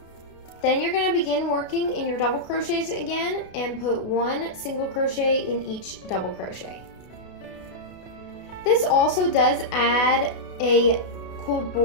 Then you're gonna begin working in your double crochets again and put 1 single crochet in each double crochet. This also does add a cool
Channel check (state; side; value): late; right; 32 ms